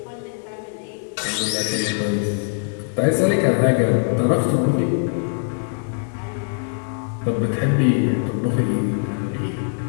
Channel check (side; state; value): right; silent; digital silence